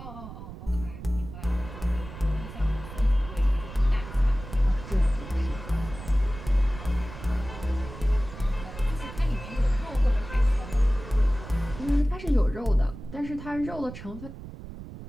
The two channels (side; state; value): right; noise; rumble, 12 dB below the sound